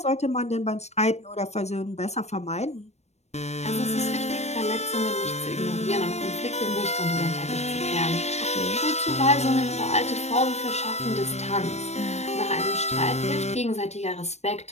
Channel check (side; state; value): right; late; 0.32 ms